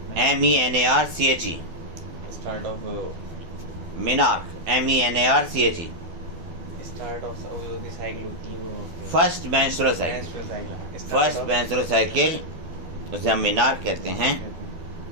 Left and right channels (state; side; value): late; left; 12 ms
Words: MENARCHE। Start of menarche MENARCHE। Start of जो साइकिल होती है वो first menstrual cycle. First menstrual cycle उसे हम मिनार्क कहते हैं।